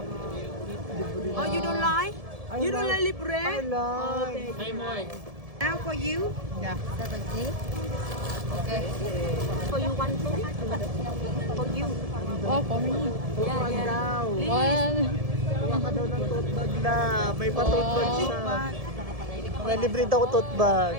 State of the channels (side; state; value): left; late; 1.7 ms